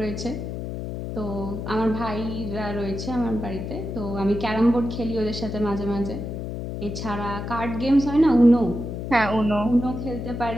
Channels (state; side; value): noise; left; hum, 6 dB below the sound